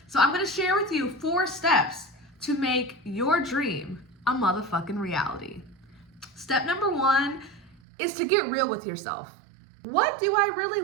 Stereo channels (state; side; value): drops out; left; at 7.8 s